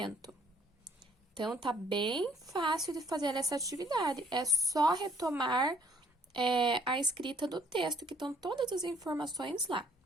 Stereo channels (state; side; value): normal; both; correlation 0.61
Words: Então, tá bem fácil de fazer essa atividade. É só retomar a escrita do texto, que estão todas as informações lá.